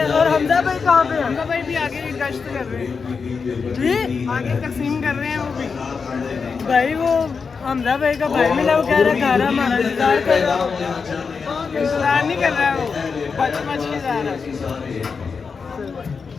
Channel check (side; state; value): right; quieter; 5.3 dB